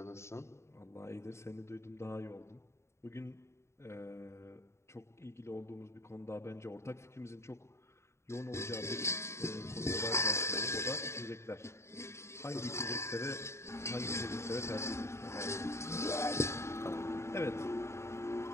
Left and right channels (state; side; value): late; right; 0.13 ms